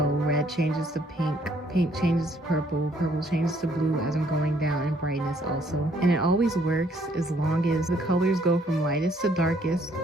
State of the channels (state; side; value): normal; both; correlation 0.66